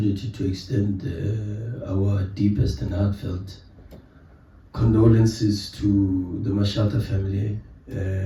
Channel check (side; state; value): both; identical; correlation 1.00